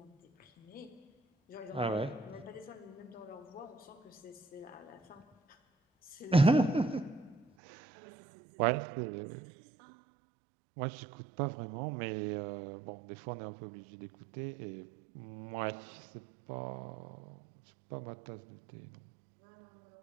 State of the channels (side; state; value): left; drops out; at 7.5 s